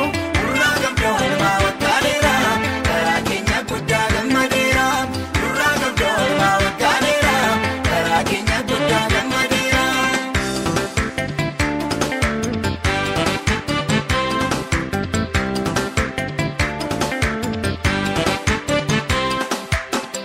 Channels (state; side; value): identical; both; correlation 1.00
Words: nurraa qabdoo ilmaa waggaaleera karaa keenya guddaa gammadeera nurraa qabdoo ilmaa waggaaleera karaa keenya guddaa gammadeera.